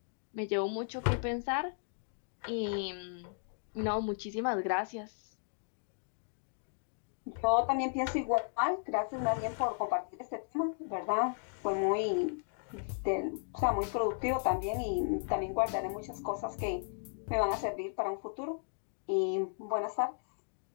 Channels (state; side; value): silent; right; digital silence